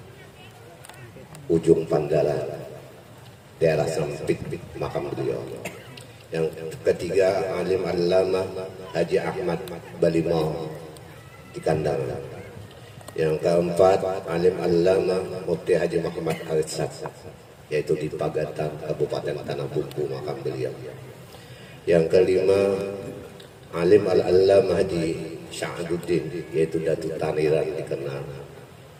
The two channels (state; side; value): identical; both; correlation 1.00